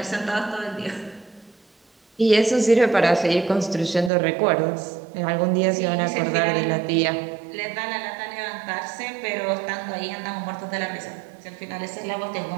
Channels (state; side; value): drops out; left; at 4.1 s